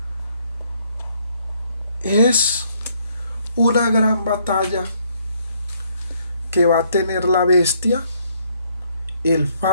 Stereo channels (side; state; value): both; inverted; correlation -0.68